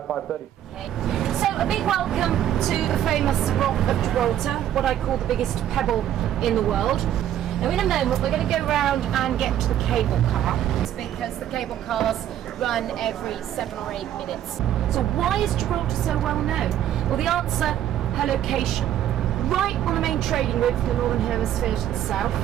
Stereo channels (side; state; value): left; quieter; 11.3 dB